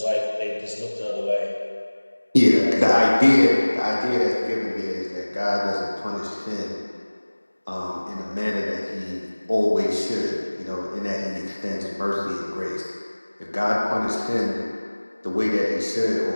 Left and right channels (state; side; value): inverted; both; correlation -1.00